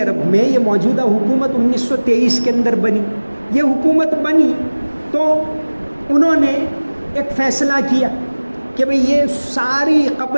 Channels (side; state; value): both; inverted; correlation -1.00